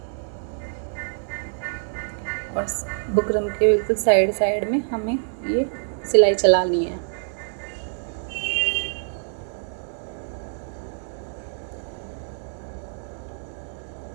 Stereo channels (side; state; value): left; silent; digital silence